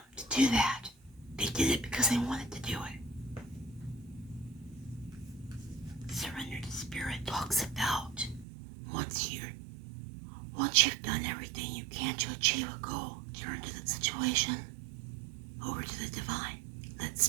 to do that. They did it because they wanted to do it. Surrender to spirit talks about once you've done everything you can to achieve a goal, turn to the situation, over to the divine. Let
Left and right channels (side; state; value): left; drops out; at 8.5 s